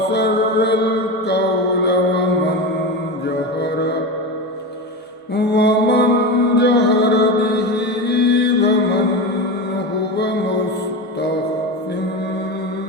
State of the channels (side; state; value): both; normal; correlation 0.22